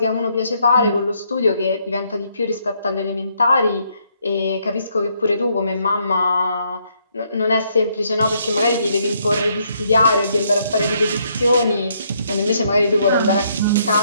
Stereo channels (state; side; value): inverted; both; correlation -0.72